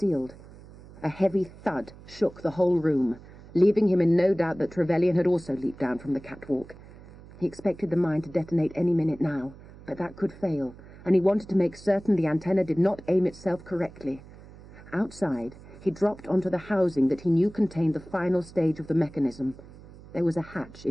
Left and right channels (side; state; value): right; noise; hum, 19 dB below the sound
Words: A heavy thud shook the whole room, leaving him in no doubt that Trevelyan had also leaped down from the catwalk. He expected the mine to detonate any minute now, but that could fail, and he wanted to make certain the antenna did not aim itself correctly. Outside, he dropped onto the housing that he knew contained the final stage of the mechanism. There was a hatch